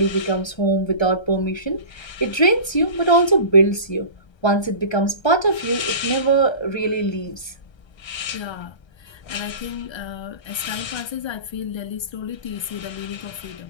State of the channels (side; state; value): right; late; 1.3 ms